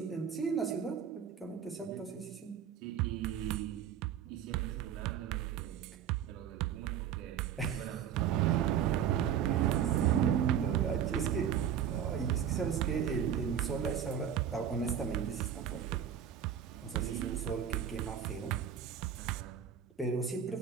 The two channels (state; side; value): quieter; left; 8.8 dB